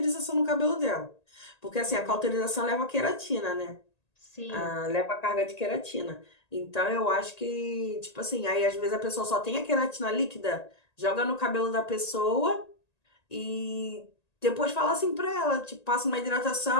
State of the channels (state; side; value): late; right; 1.9 ms